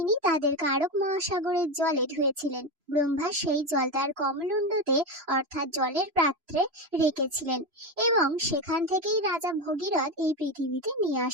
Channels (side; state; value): left; late; 3.0 ms